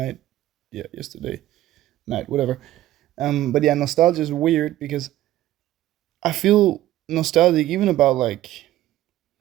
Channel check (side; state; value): left; quieter; 14.3 dB